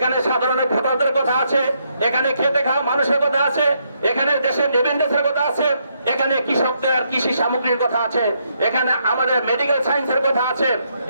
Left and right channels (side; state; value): both; inverted; correlation -0.76